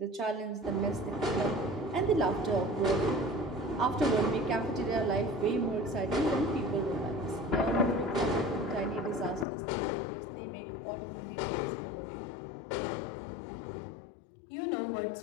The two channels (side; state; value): right; drops out; at 9.5 s